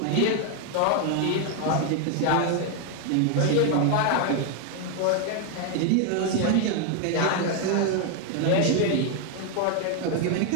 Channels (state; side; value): different; both; correlation 0.00